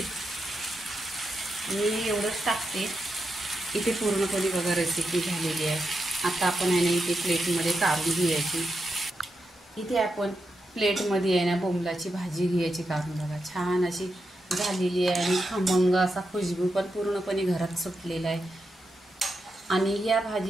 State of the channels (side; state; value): both; normal; correlation 0.86